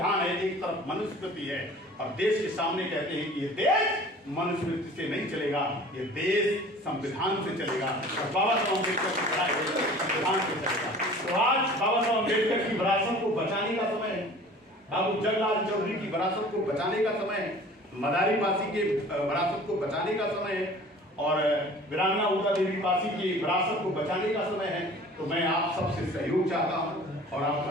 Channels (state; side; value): normal; both; correlation 0.45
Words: है, एक तरफ मनुस्मृति है, और देश के सामने कहते हैं कि ये देश मनुस्मृति से नहीं चलेगा, ये देश संविधान से चलेगा, और बाबा साहब अम्बेडकर की पढ़ाई संविधान से चलेगा। तो आज बाबा साहब अम्बेडकर की विरासत को बचाने का समय है, बाबू जगलाल चौधरी की विरासत को बचाने का समय है, मदारी पासी के विरासत को बचाने का समय है, और वीरांगना उषा देवी पासी की विरासत को बचाने का समय है। तो मैं आप सबसे सहयोग चाहता हूं और